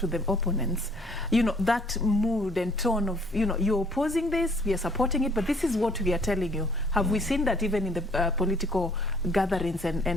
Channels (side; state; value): both; normal; correlation 0.61